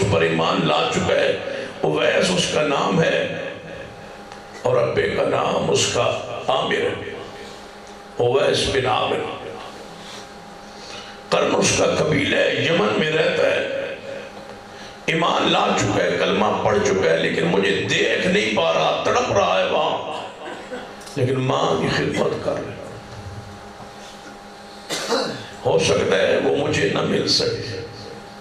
پر ایمان لا چکا ہے. اویس اس کا نام ہے اور ابے کا نام اس کا عامر ہے، اویس بن عامر. قرن اس کا قبیلہ ہے، یمن میں رہتا ہے، ایمان لا چکا ہے، کلمہ پڑھ چکا ہے، لیکن مجھے دیکھ نہیں پا رہا، تڑپ رہا ہے وہاں، لیکن ماں کی خدمت کر رہا ہے. ہو سکتا ہے وہ مجھے نہ مل سکے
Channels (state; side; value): identical; both; correlation 1.00